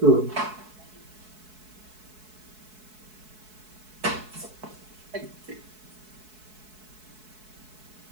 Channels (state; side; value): late; left; 4.7 ms